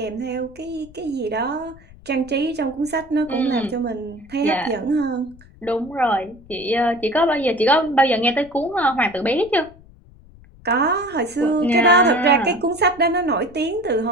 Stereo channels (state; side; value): noise; left; rumble, 23 dB below the sound